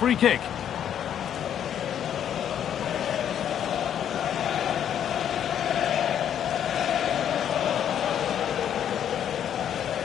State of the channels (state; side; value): quieter; right; 9.5 dB